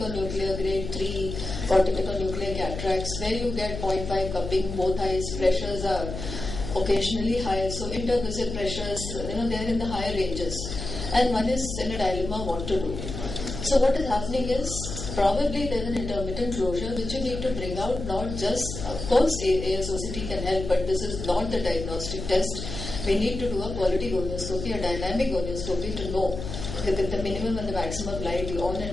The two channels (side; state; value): left; noise; hum, 7 dB below the sound